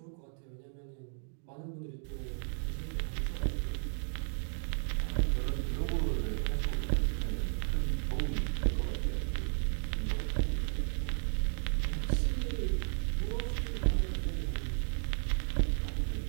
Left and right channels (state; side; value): silent; left; 55 dB below the other